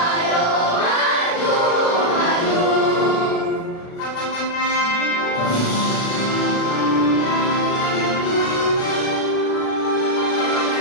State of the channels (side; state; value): right; late; 36 ms